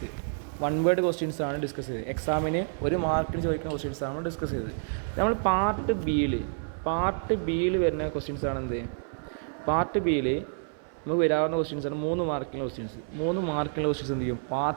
വൺ വേർഡ് ക്വസ്റ്റ്യൻസ് ആണ് ഡിസ്കസ് ചെയ്തത്. എക്സാമിന് ഒരു മാർക്കിന് ചോദിക്കുന്ന ക്വസ്റ്റ്യൻസ് ആണ് ഡിസ്കസ് ചെയ്തത്. നമ്മൾ പാർട്ട് ബിയിൽ വരുന്ന ക്വസ്റ്റ്യൻസ് ആണ് എന്ത്? പാർട്ട് ബിയിൽ നമുക്ക് വരാവുന്ന ക്വസ്റ്റ്യൻസ് ആണ് 3 മാർക്കിൻ്റെ ക്വസ്റ്റ്യൻസ്. 3 മാർക്കിൻ്റെ ക്വസ്റ്റ്യൻസ് എന്ത് ചെയ്യും?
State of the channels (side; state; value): left; silent; 59 dB below the other